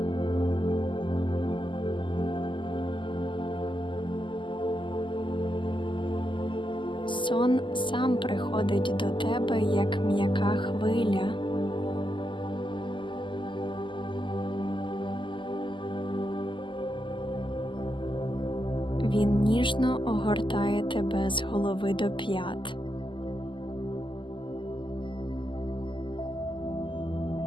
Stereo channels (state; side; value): late; right; 0.24 ms